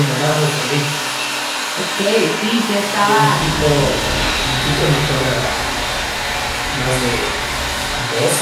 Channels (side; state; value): both; identical; correlation 1.00